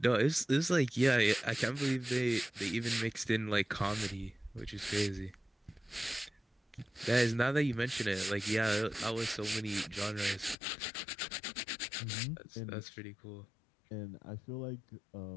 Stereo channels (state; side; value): drops out; right; at 10.6 s